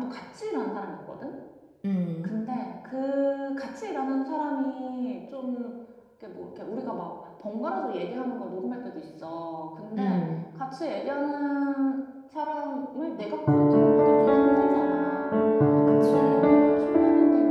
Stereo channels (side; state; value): both; identical; correlation 1.00